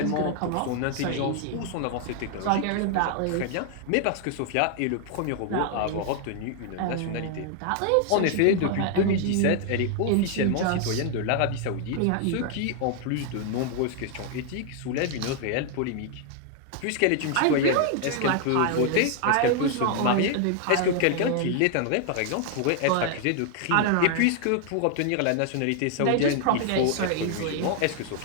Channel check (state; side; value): different; both; correlation 0.00